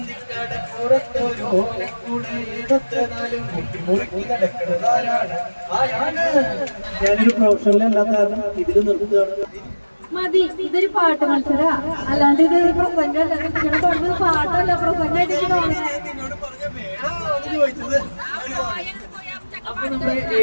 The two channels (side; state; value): both; inverted; correlation -1.00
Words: ഓലക്കൂടെ എടുത്ത് നാലും കുത്തി മുറുക്കി നടക്കുന്നതാരാണ്? ആരാണ്? ഞാനൊരു പ്രൊഫഷണലല്ലാത്ത കാരണം ഇതിൽ നിർത്തുകയാണ്. മതി, ഇതൊരു പാട്ട് മത്സര, അല്ലാണ്ട് ഇതൊരു പ്രസംഗമല്ല. നിങ്ങളുടെ പറഞ്ഞത് പാട്ടല്ല, പ്രസംഗമായിട്ട് അപ്പൊ നമ്മുടെ